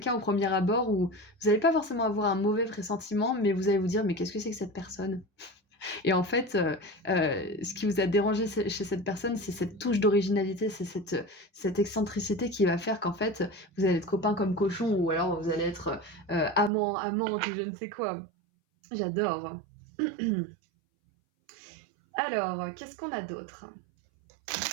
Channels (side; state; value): left; drops out; at 16.7 s